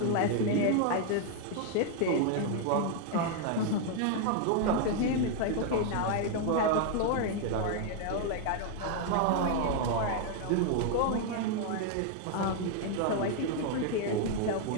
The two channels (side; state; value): both; different; correlation 0.00